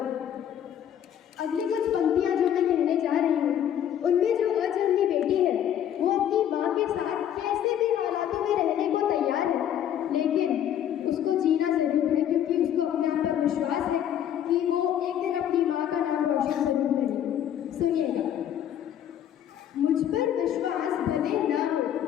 अगली कुछ पंक्तियाँ जो मैं कहने जा रही हूँ, उनमें जो अजन्मी बेटी है वो अपनी माँ के साथ कैसे भी हालातों में रहने को तैयार है, लेकिन उसको जीना जरूर है, क्योंकि उसको अपने आप पर विश्वास है कि वो एक दिन अपनी माँ का नाम रोशन जरूर करेगी। सुनिएगा, मुझ पर विश्वास भले ना हो,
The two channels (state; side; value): quieter; right; 10.1 dB